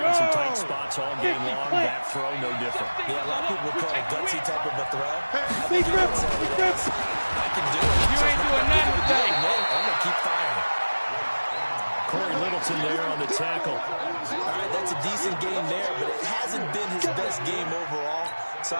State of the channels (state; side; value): inverted; both; correlation -1.00